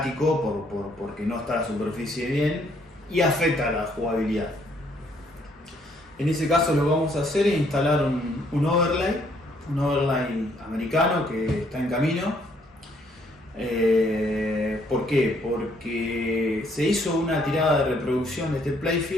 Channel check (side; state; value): both; normal; correlation 0.67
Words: porque no está la superficie bien y afecta a la jugabilidad. En ese caso, lo que vamos a hacer es instalar un overlay americano que está en camino. ¿Por qué? Porque se hizo una tirada de reproducción de este